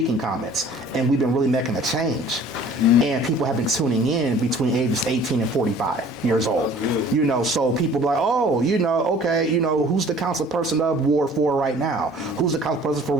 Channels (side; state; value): both; normal; correlation 0.50